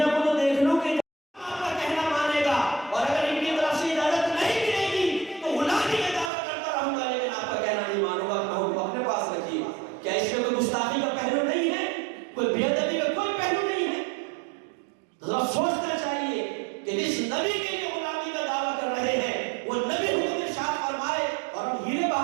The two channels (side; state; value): left; drops out; at 6.3 s